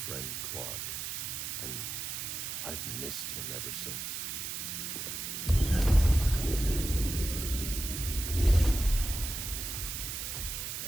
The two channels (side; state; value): right; noise; hiss, 4 dB below the sound